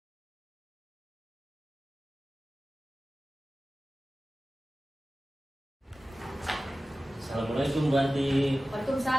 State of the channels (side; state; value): both; normal; correlation 0.96